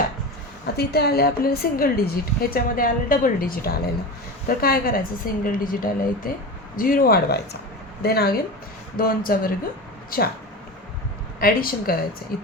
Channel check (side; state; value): both; normal; correlation 0.26